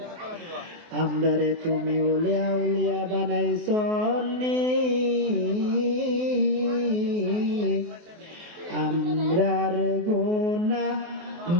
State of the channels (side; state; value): left; late; 24 ms